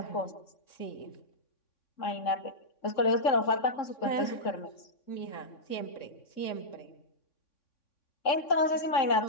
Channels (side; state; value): right; late; 3.7 ms